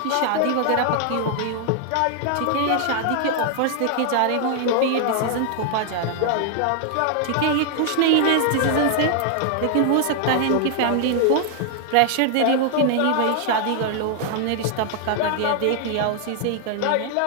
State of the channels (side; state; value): both; different; correlation 0.00